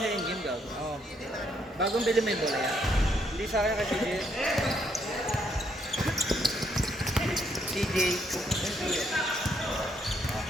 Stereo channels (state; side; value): normal; both; correlation 0.73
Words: sa in-game ka. Oo. Bagong bili mo yung bola yan. Hindi sa akin kasi CJ.